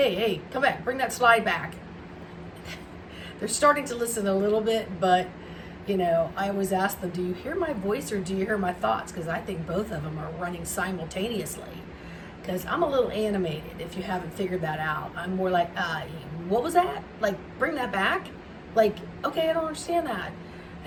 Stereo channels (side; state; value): both; identical; correlation 1.00